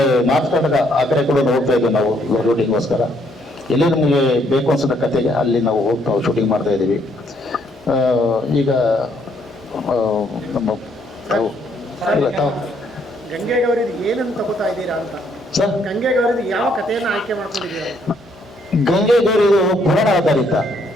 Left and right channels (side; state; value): both; normal; correlation 0.69